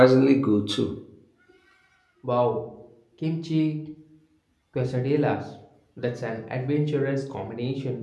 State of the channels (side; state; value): both; identical; correlation 1.00